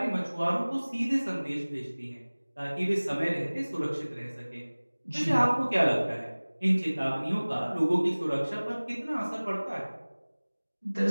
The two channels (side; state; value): both; inverted; correlation -1.00